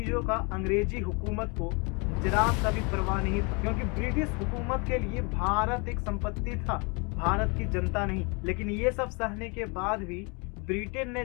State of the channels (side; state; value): right; quieter; 31.3 dB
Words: का अंग्रेजी हुकूमत को जरा सा भी परवाह नहीं था, क्योंकि ब्रिटिश हुकूमत के लिए भारत एक संपत्ति था, भारत की जनता नहीं। लेकिन ये सब सहने के बाद भी ब्रिटेन ने